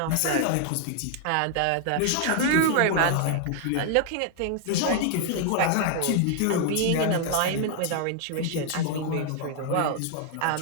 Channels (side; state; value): both; different; correlation 0.00